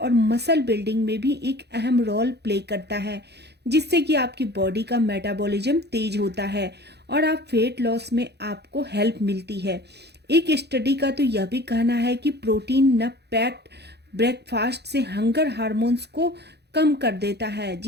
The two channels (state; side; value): late; left; 0.48 ms